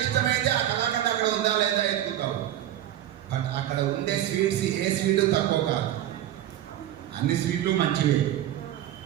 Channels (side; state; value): left; quieter; 12.1 dB